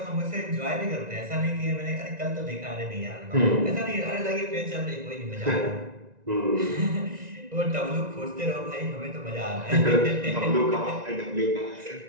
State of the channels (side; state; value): left; late; 1.9 ms